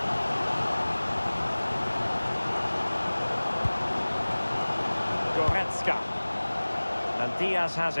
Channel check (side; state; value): both; inverted; correlation -1.00